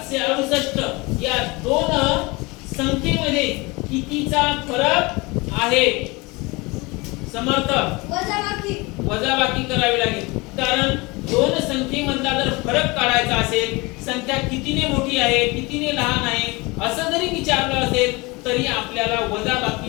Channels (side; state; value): right; quieter; 24.9 dB